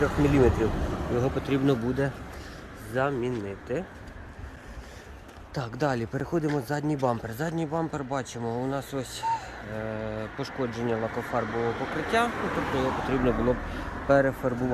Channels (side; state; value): both; identical; correlation 1.00